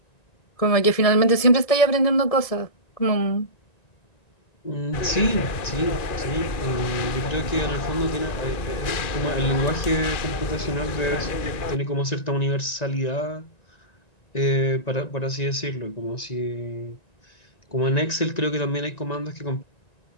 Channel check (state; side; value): late; right; 1.9 ms